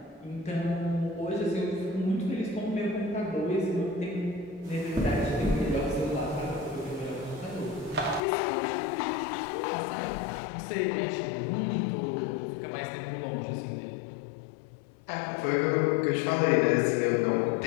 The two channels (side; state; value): right; drops out; at 8.2 s